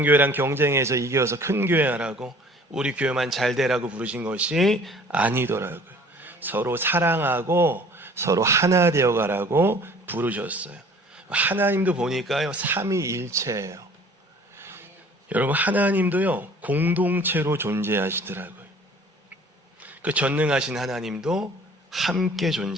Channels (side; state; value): both; normal; correlation 0.50